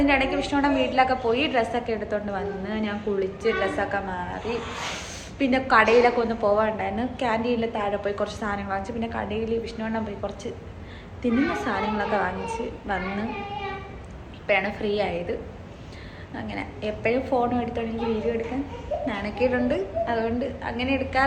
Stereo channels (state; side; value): identical; both; correlation 1.00